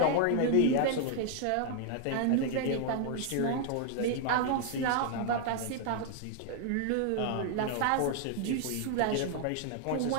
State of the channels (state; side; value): different; both; correlation 0.00